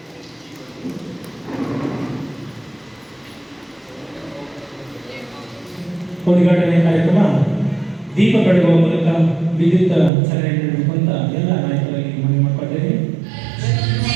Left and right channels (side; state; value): left; drops out; at 10.1 s